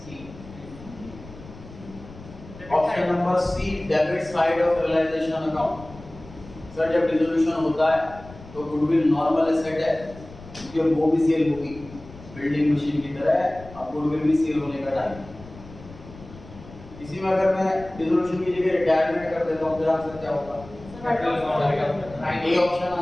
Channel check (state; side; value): noise; left; rumble, 18 dB below the sound